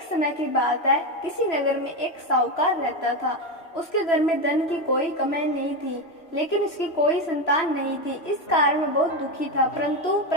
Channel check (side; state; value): right; late; 3.0 ms